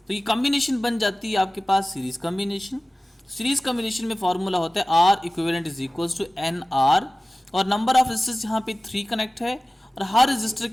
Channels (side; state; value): both; normal; correlation 0.97